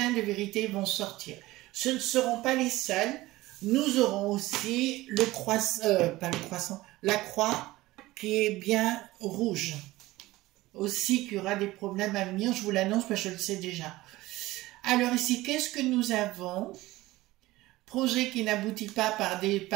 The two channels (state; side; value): quieter; left; 18.3 dB